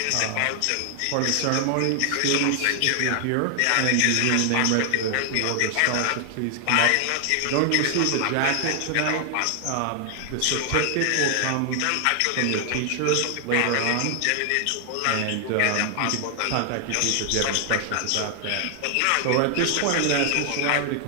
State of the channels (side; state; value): both; different; correlation 0.00